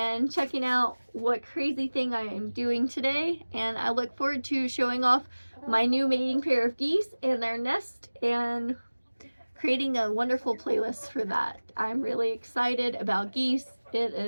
checking out what crazy thing I am doing today. And I look forward to showing off my new mating pair of geese and their nest and creating a wonderful playlist for that. I'm really excited about geese. It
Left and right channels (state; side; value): inverted; both; correlation -1.00